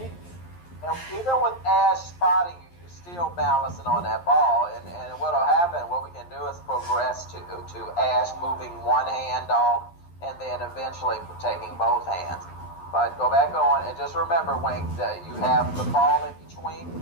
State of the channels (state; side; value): late; right; 11 ms